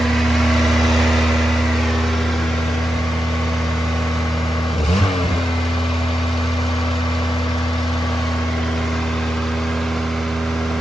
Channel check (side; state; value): both; normal; correlation 0.88